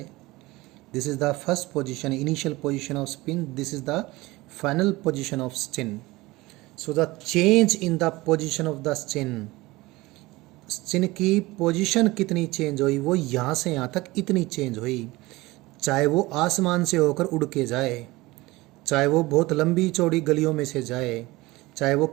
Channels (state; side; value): quieter; left; 20.6 dB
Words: This is the first position, initial position of Sachin. This is the final position of Sachin. So the change in the position of the Sachin, Sachin की पोजीशन कितनी चेंज हुई, वो यहाँ से यहाँ तक इतनी चेंज हुई। चाहे वो आसमान से होकर उड़ के जाए, चाहे वो बहुत लंबी चौड़ी गलियों में से जाए, चाहे वो